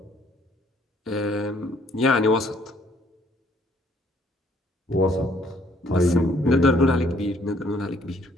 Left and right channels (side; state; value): both; normal; correlation 0.64